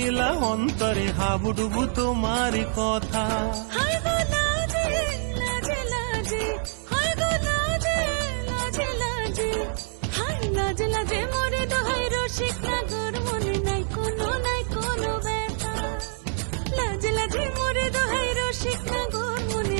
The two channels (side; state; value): left; silent; digital silence